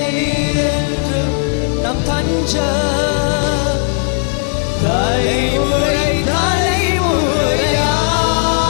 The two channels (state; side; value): silent; right; 56 dB below the other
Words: நீர் என்றும் நம் தஞ்ச, தலைமுறை தலைமுறையா.